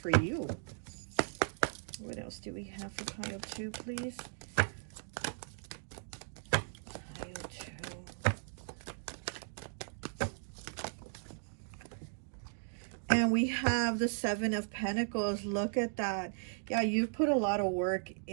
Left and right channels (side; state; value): left; silent; digital silence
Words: you. What else do we have for pile 2, please? Pile 2. And we have the 7 of Pentacles. Look at that. Yeah, you've put a lot of work